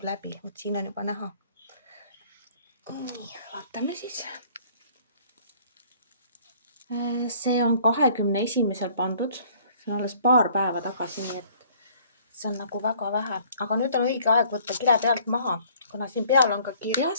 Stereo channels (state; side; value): inverted; both; correlation -0.56